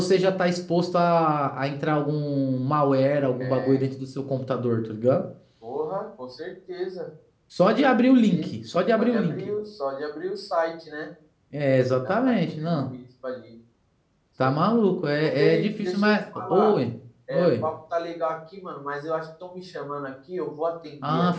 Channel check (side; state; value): both; identical; correlation 1.00